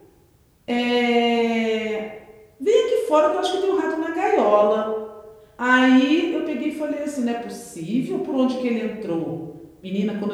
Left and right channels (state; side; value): identical; both; correlation 1.00